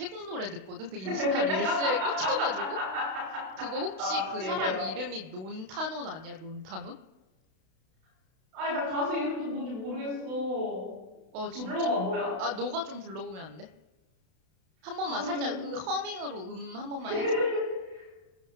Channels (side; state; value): left; late; 32 ms